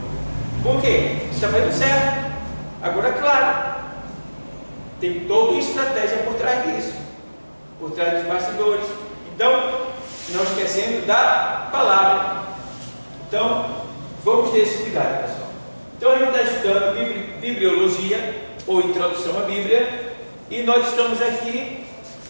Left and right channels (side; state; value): both; inverted; correlation -1.00